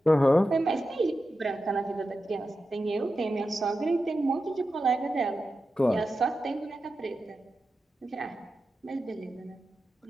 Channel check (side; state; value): both; normal; correlation 0.91